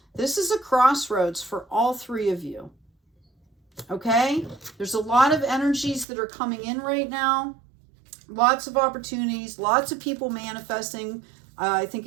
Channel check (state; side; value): drops out; left; at 6.1 s